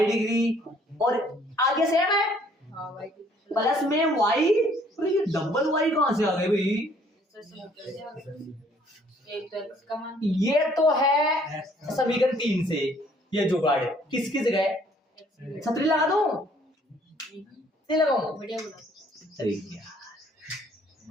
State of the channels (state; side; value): normal; both; correlation 0.61